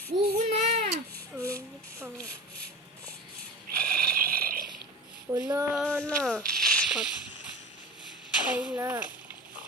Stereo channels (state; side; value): normal; both; correlation 0.31